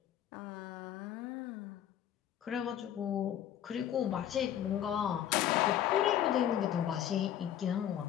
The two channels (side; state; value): right; quieter; 10.7 dB